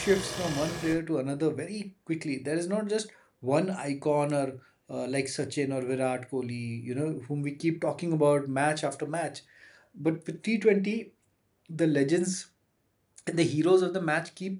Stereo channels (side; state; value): both; identical; correlation 1.00